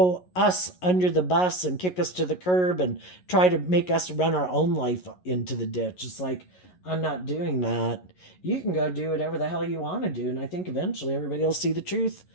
us under the bus and kick us to the curb and try to make us run our own life into the ditch. It's like, I'm not doing that. You can go do whatever the hell you want to do. And I think eventually everybody will see the truth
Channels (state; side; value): late; right; 11 ms